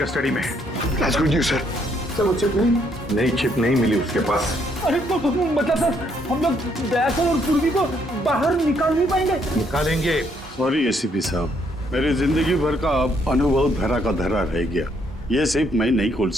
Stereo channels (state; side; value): normal; both; correlation 0.71